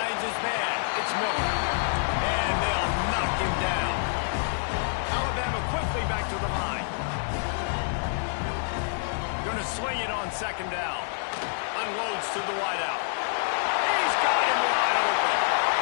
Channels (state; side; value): silent; right; digital silence